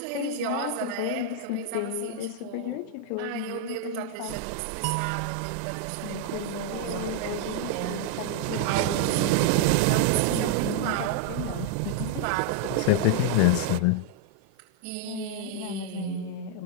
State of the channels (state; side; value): different; both; correlation 0.00